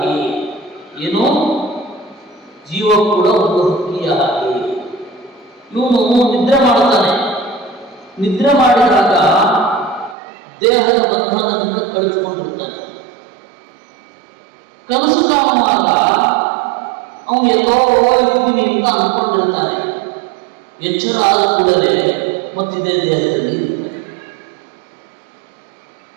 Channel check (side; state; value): left; drops out; at 10.2 s